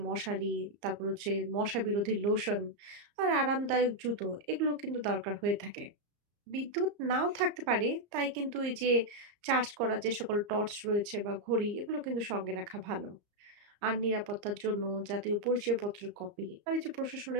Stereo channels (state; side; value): late; left; 34 ms